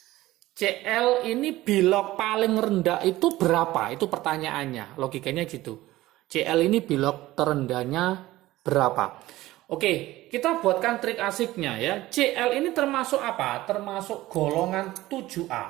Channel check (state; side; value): quieter; left; 16.9 dB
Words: ini bilog paling rendah itu berapa? Itu pertanyaannya, logikanya gitu. CL ini bilog terendahnya berapa? Oke, kita buatkan trik asiknya ya. CL ini termasuk apa? Termasuk golongan 7A.